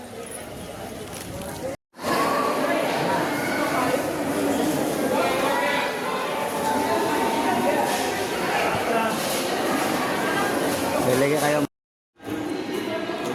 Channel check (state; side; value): identical; both; correlation 1.00